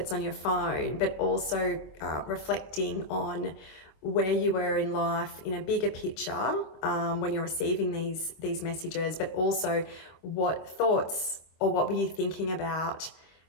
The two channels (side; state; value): right; late; 25 ms